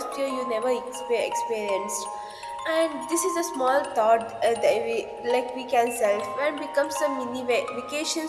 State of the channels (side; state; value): both; identical; correlation 1.00